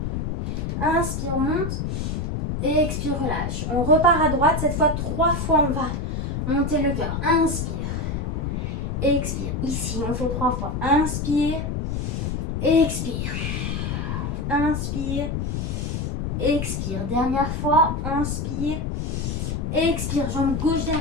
Inspire, monte. Expire, relâche. On repart à droite. Cette fois, 3 fois, on va monter le cœur. Inspire. Expire. Ici, on fait 3 fois. Inspire. Expire. Inspire. Expire. Dernière fois. Inspire. Expire. Jambe gauche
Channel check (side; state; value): left; noise; rumble, 2 dB below the sound